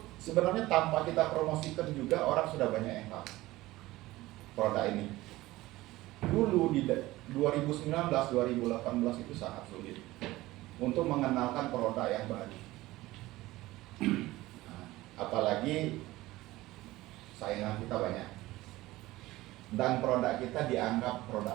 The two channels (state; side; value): quieter; left; 18.0 dB